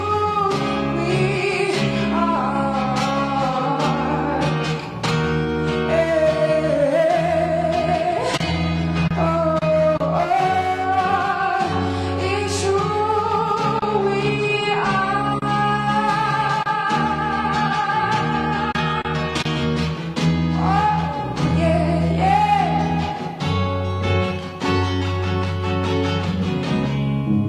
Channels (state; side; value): identical; both; correlation 1.00